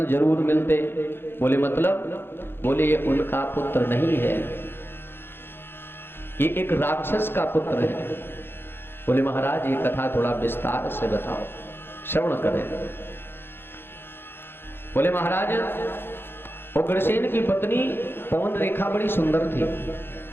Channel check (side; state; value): right; late; 0.10 ms